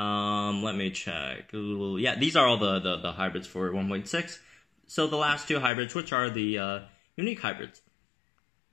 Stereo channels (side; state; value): right; drops out; at 5.7 s